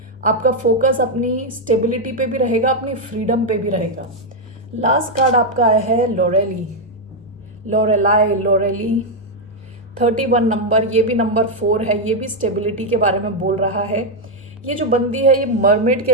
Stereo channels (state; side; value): normal; both; correlation 0.01